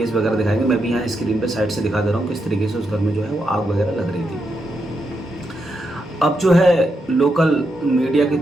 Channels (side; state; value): both; normal; correlation 0.83